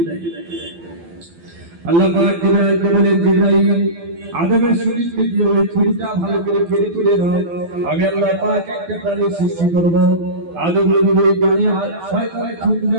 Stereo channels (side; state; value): left; late; 12 ms